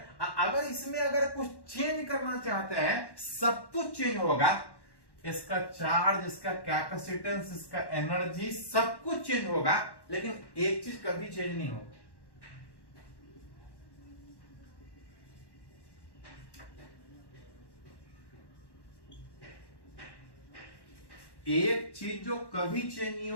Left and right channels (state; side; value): late; right; 1.1 ms